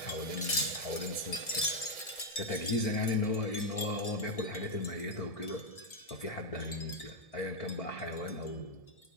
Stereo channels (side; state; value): right; late; 1.7 ms